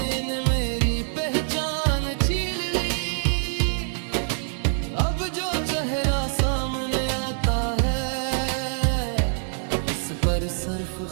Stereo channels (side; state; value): left; silent; 62 dB below the other